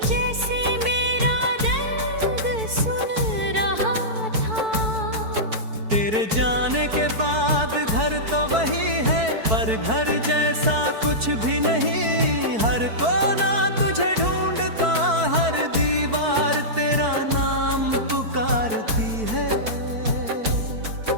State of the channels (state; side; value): late; left; 4.6 ms